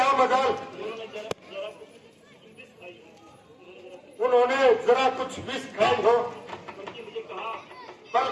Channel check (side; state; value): both; identical; correlation 1.00